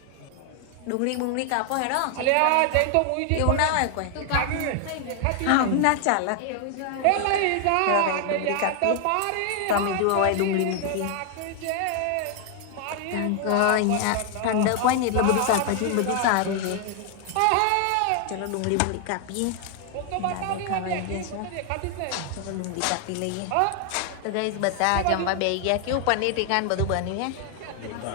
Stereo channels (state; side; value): different; both; correlation 0.00